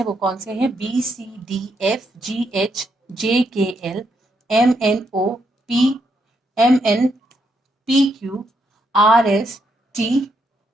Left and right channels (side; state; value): both; normal; correlation 0.78